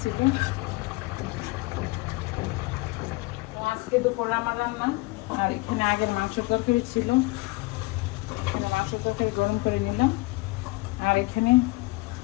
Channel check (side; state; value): right; quieter; 22.7 dB